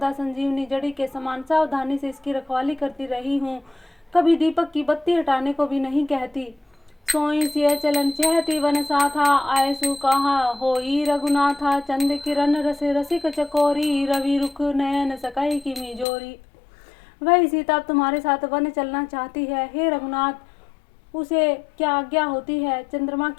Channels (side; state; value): right; drops out; at 16.1 s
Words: संजीवनी जड़ी के समान सावधानी से इसकी रखवाली करती रही हूँ, कभी दीपक की बत्ती हटाने को भी नहीं कहती। सोई सिय चलन चहती वन साथा, आयसु कहा होई रघुनाथा। चंद किरण रस रसिक चकोरी, रवि रुख नयन सकई की मिजोरी। वही सीता अब तुम्हारे साथ वन चलना चाहती है। हे रघुनाथ, उसे क्या आज्ञा होती है? चंद्रमा